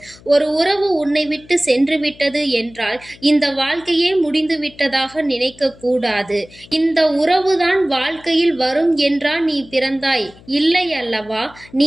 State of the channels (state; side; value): noise; left; hum, 24 dB below the sound